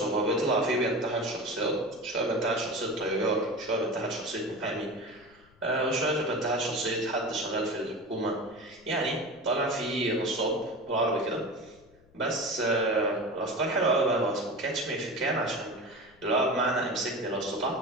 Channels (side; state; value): left; noise; rumble, 29 dB below the sound